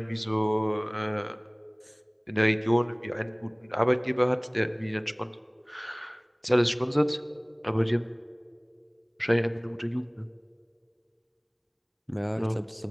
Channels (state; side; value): identical; both; correlation 1.00